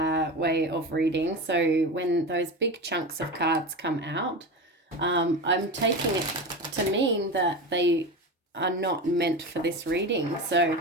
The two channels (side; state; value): both; normal; correlation 0.24